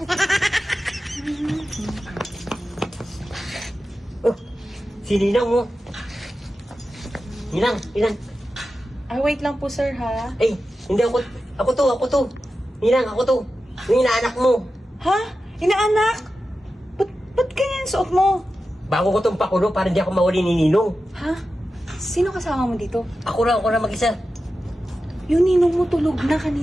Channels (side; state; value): both; normal; correlation 0.92